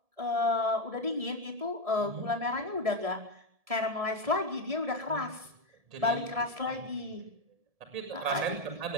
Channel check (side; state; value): left; late; 1.7 ms